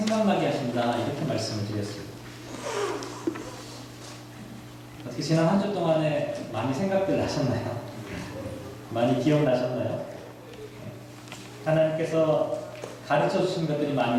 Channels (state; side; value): identical; both; correlation 1.00